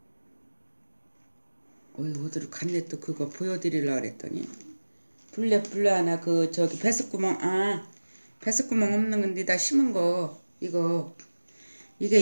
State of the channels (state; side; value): inverted; both; correlation -1.00